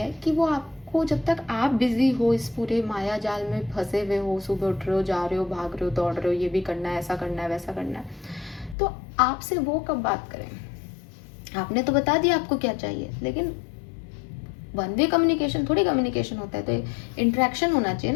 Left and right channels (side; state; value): right; drops out; at 8.8 s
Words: कि वो आपको, जब तक आप बिजी हो, इस पूरे माया जाल में फंसे हुए हो, सुबह उठ रहे हो, जा रहे हो, भाग रहे हो, दौड़ रहे हो, ये भी करना है, ऐसा करना है, वैसा करना है, तो आपसे वो कब बात करें? आपने तो बता दिया आपको क्या चाहिए, लेकिन वन वे कम्युनिकेशन थोड़ी कम्युनिकेशन होता है, तो इंटरेक्शन होना चाहिए